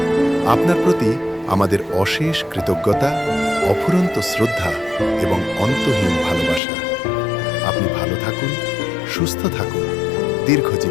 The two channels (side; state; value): right; drops out; at 6.6 s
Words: আপনার প্রতি আমাদের অশেষ কৃতজ্ঞতা, অফুরন্ত শ্রদ্ধা এবং অন্তহীন ভালোবাসা। আপনি ভালো থাকুন, সুস্থ থাকুন,